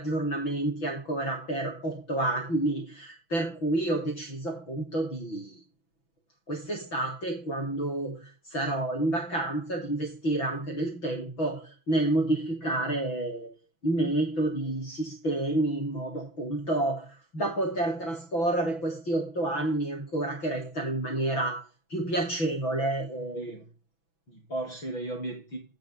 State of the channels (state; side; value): late; right; 6.1 ms